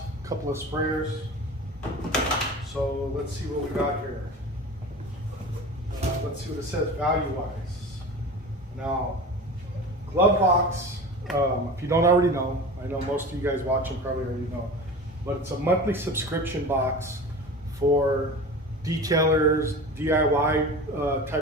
a couple of sprayers. So let's see what we got here. Let's see what it says value-wise. Now, glove box, if you don't already know, I know most of you guys watching probably already know, but it's a monthly subscription box for detailers, DIY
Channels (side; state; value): both; normal; correlation 0.33